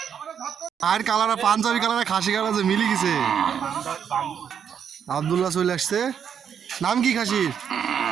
আর কালারা পাঞ্জাবি কালারে খাসি কালার যে মিলি গেছে। আব্দুল্লাহ চলে আসছে। নাম কি খাসির?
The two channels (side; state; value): left; quieter; 7.9 dB